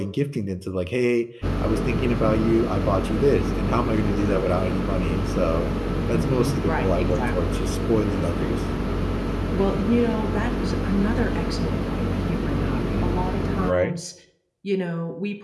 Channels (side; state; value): both; identical; correlation 1.00